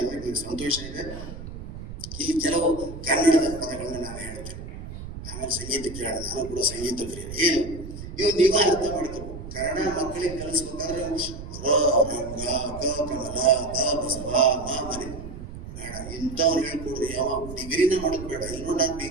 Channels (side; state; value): right; noise; rumble, 10 dB below the sound